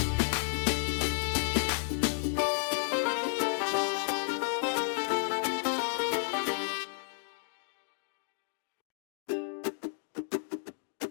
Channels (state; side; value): silent; right; digital silence